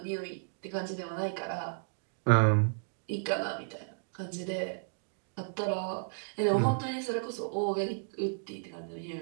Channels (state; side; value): silent; left; digital silence